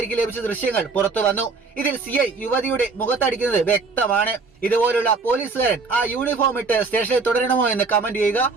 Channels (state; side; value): quieter; left; 4.2 dB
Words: ലഭിച്ച ദൃശ്യങ്ങൾ പുറത്തു വന്നു. ഇതിൽ CI യുവതിയുടെ മുഖത്തടിക്കുന്നത് വ്യക്തമാണ്. ഇതുപോലുള്ള പോലീസുകാരൻ ആ യൂണിഫോം ഇട്ട് സ്റ്റേഷനിൽ തുടരണമോ എന്ന് കമന്റ് ചെയ്യുക.